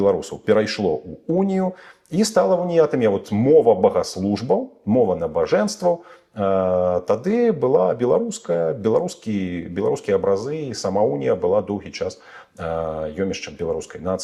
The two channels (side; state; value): both; identical; correlation 1.00